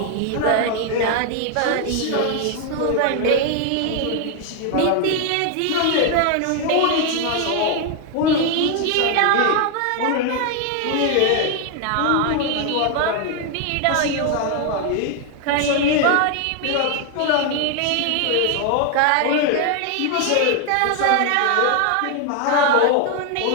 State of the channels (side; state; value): both; different; correlation 0.00